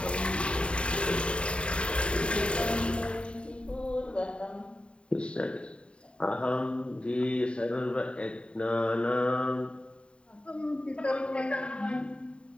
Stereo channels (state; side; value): late; right; 0.056 ms